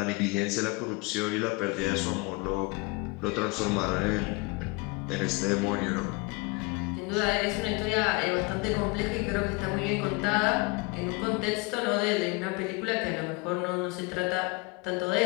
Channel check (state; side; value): quieter; right; 27.0 dB